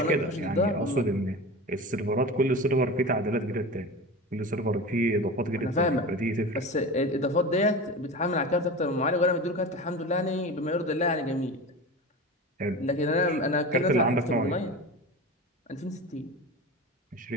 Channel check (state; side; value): normal; both; correlation 0.30